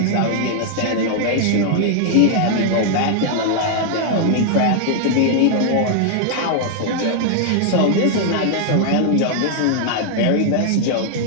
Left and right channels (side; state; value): both; different; correlation 0.00